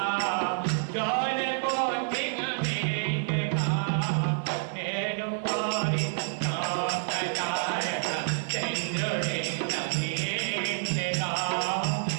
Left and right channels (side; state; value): left; silent; 59 dB below the other